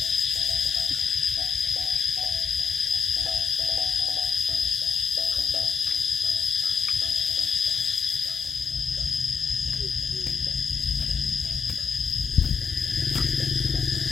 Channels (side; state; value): right; quieter; 6.0 dB